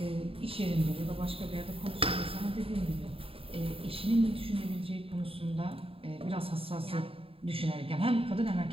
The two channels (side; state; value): left; late; 0.27 ms